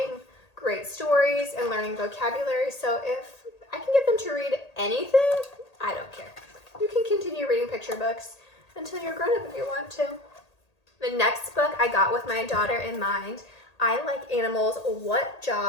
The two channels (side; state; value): right; late; 1.8 ms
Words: great stories and learning vocabulary. So if I can get them to read anything, I don't care. You can continue reading picture books until you're grown up if you want to. The next book I got with my daughter in mind. I like animals. What